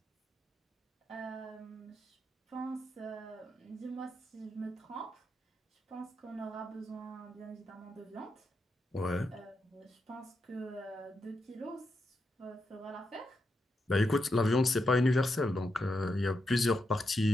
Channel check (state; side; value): normal; both; correlation 0.84